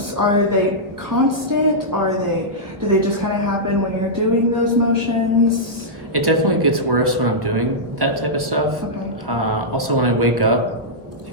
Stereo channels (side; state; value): left; late; 1.3 ms